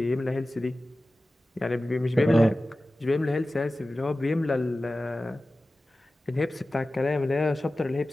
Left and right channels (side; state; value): both; normal; correlation 0.96